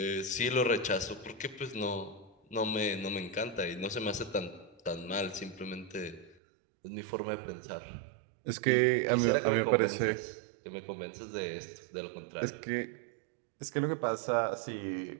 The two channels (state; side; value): drops out; left; at 6.4 s